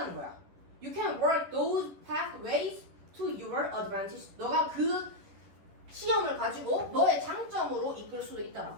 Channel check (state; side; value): late; left; 11 ms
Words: 거야. You can work those pathways to your advantage 너가 그 시험을 가지고 너의 장점으로 이끌 수도 있다라고